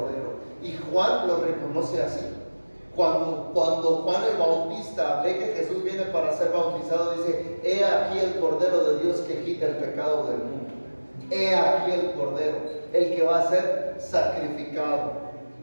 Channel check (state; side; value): inverted; both; correlation -1.00